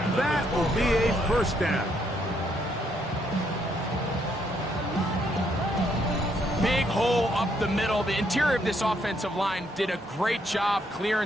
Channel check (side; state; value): both; normal; correlation 0.73